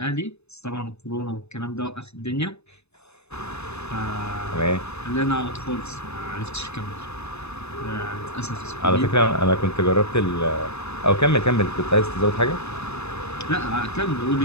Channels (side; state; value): right; late; 0.80 ms